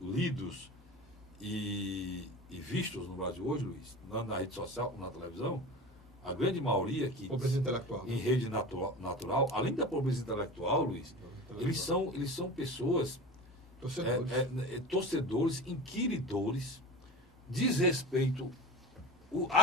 lidos e vistos no Brasil hoje, Luiz, na rede social, na televisão, a grande maioria que Pobreza intelectual. em rede natural, além da pobreza intelectual, Luiz, eles são pessoas torcedores, inquiridores, desrespeito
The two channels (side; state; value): both; normal; correlation 0.32